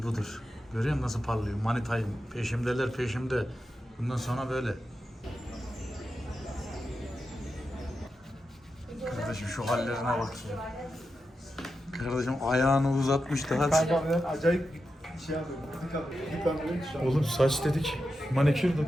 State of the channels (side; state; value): both; normal; correlation 0.89